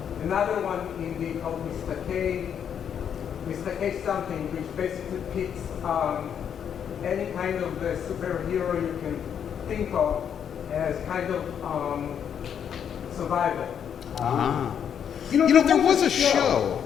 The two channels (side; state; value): right; quieter; 8.3 dB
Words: another one indie called Mr. K something, which basically pits any kind of superhero you can think of as kind of survival. You know, there was a show.